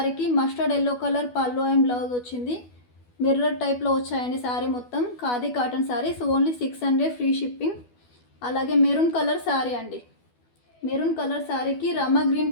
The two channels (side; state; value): right; late; 12 ms